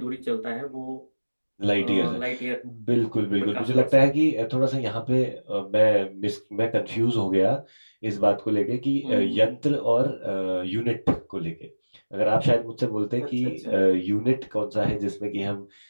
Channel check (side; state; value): both; inverted; correlation -1.00